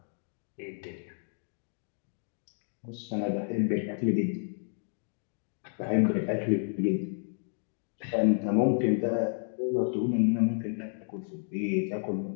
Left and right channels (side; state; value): right; silent; 57 dB below the other